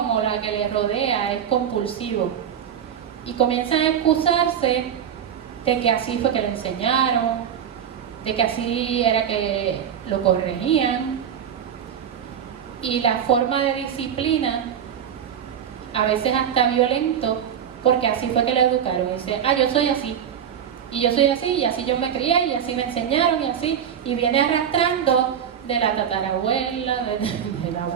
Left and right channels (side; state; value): left; quieter; 8.7 dB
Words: o la que le rodea es compulsivo, y comienzan a excusarse de que así fue que le enseñaron, de que así era que lo corregían, y la forma de disciplina a veces hasta violento, porque así fue que lo educaron. Y dice, yo soy así, y yo soy así, y así yo me crié, y así me enseñaron, y así, y viene arrastrando de la tatarabuela, del